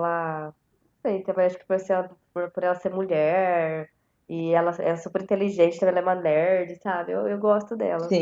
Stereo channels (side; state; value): both; identical; correlation 1.00